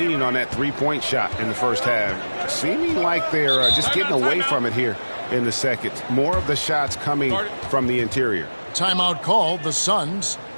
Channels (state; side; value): inverted; both; correlation -1.00